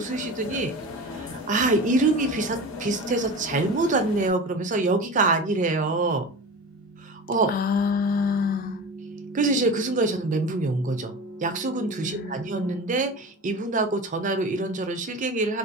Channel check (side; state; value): both; normal; correlation 0.31